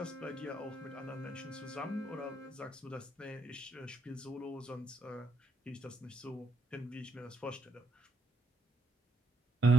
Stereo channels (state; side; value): normal; both; correlation 0.78